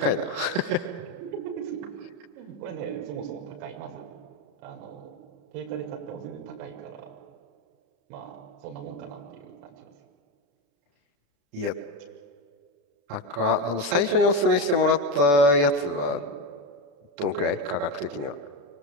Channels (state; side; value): late; left; 35 ms